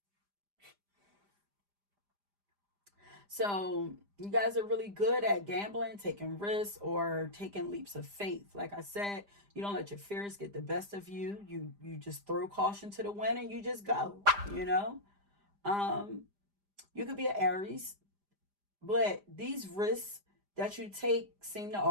So you guys are really good at gambling, taking risks, or taking leaps of faith. Like I said, you don't let your fears get the best of you. You just throw caution to the wind and you just go. You know, um, you could be an Aries, but these risks that you take seem to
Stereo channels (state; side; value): late; left; 5.0 ms